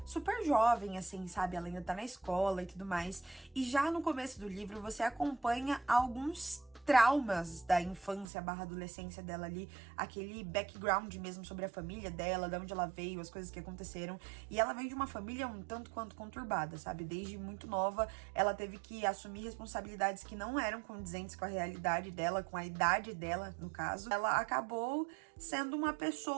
super jovem, assim, sabe? Ela ainda tá na escola e tudo mais. E já no começo do livro você acompanha alguns traumas da infância / adolescência dela ali, aquele background mesmo sobre a família dela, de onde ela veio, as coisas que aconteceram. E ela vem de uma família um tanto quanto conturbada, sabe? Desde muito nova, ela teve que assumir responsabilidades que não eram condizentes com a realidade dela, com a idade dela, no caso. Ela acabou sendo uma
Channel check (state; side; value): drops out; left; at 8.2 s